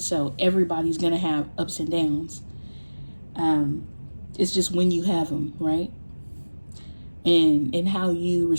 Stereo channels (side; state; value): both; inverted; correlation -1.00